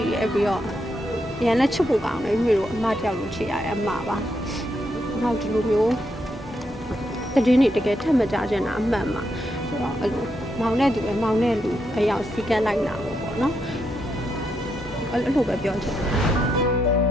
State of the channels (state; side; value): normal; both; correlation 0.81